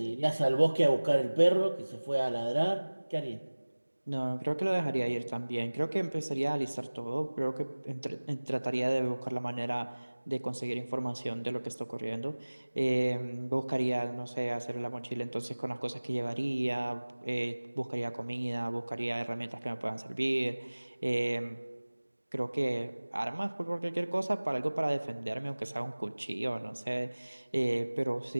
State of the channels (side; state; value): both; inverted; correlation -1.00